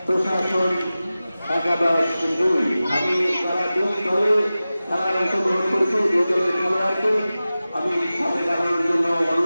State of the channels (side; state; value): both; inverted; correlation -0.96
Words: প্রশাসন একাদশ 2 আমি তারা 2 দলে খেলায় অংশগ্রহণ করেছি 2 দলের খেলোয়াড়কে আমি সাথে জানানোর জন্য